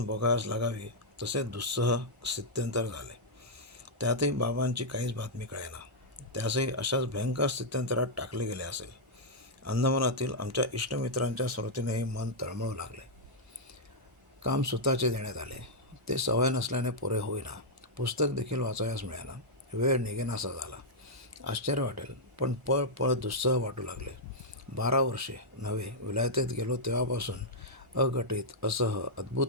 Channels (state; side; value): normal; both; correlation -0.07